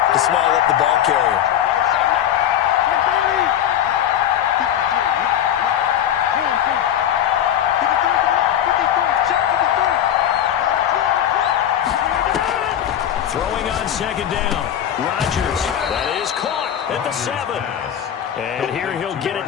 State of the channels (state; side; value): quieter; right; 10.4 dB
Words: to swallow up the ball carrier. Throwing on 2nd down. Rodgers, that is caught at the 7. And here he'll get